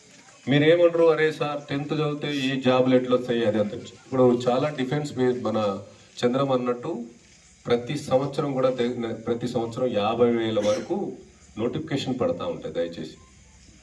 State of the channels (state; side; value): identical; both; correlation 1.00